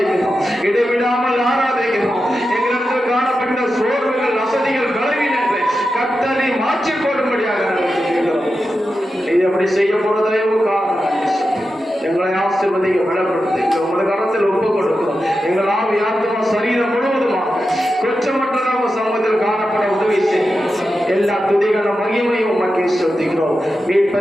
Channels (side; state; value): both; normal; correlation 0.90